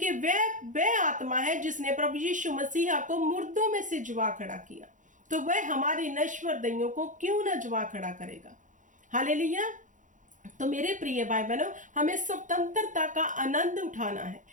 वह आत्मा है जिसने प्रभु यीशु मसीह को मुर्दों में से जुआ खड़ा किया, तो वह हमारी नश्वर दैयों को क्यों ना जुआ खड़ा करेगा। हालेलुया। तो मेरे प्रिय भाई बहनों, हमें स्वतंत्रता का आनंद उठाना है।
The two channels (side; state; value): left; late; 0.37 ms